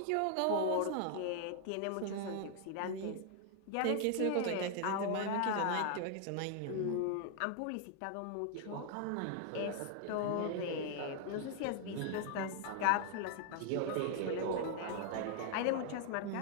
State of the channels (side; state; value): both; different; correlation 0.00